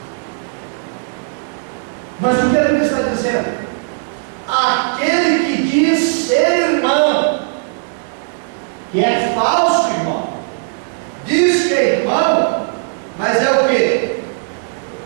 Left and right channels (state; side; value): silent; left; digital silence